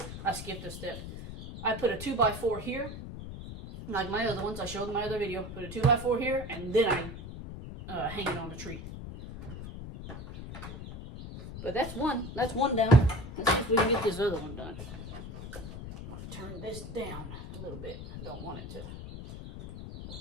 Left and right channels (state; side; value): noise; left; rumble, 10 dB below the sound